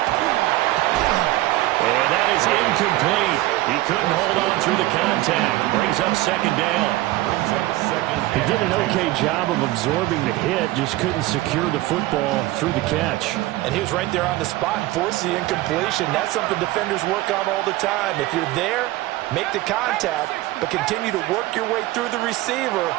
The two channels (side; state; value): left; quieter; 17.5 dB